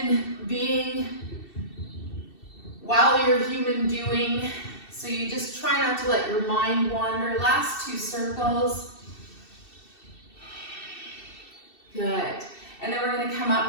being while you're human doing. So you just try not to let your mind wander. Last 2 circles. Good. And then we're going to come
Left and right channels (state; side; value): late; right; 2.7 ms